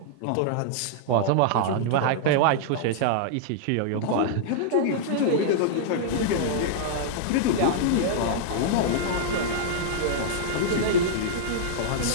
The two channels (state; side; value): different; both; correlation -0.01